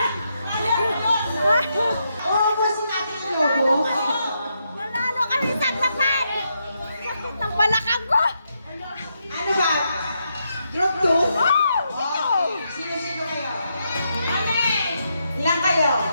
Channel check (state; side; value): inverted; both; correlation -0.81